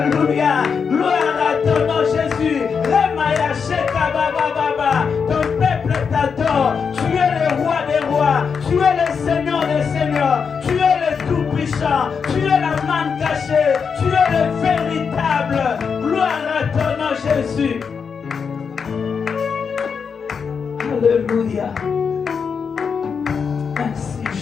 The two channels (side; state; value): right; quieter; 6.1 dB